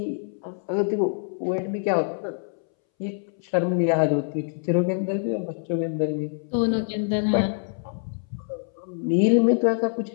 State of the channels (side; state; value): right; silent; 62 dB below the other